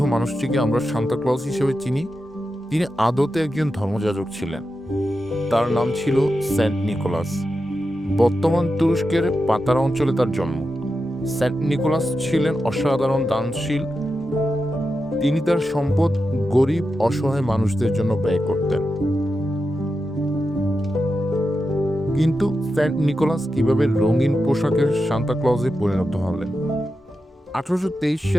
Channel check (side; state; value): both; normal; correlation 0.89